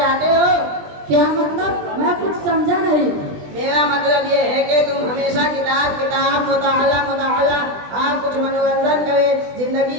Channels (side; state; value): left; late; 20 ms